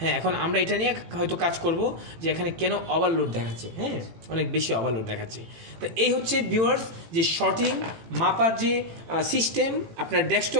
হ্যাঁ এখন আমরা এটা নিয়ে হয়তো কাজ করব যে এখানে কেন ওভারলোড দেখাচ্ছে, হ্যাঁ অনেক বেশি ওভারলোড দেখাচ্ছে। তো এই হচ্ছে ভিউয়ার্স যে শর্টিং মাপার যে সিস্টেম, আপনার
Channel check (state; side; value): late; left; 18 ms